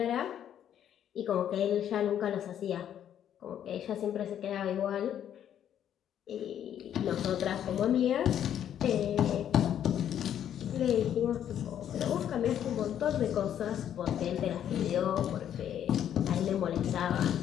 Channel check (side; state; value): right; quieter; 10.0 dB